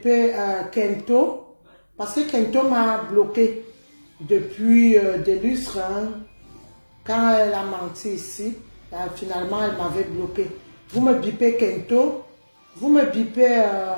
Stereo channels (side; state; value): both; inverted; correlation -1.00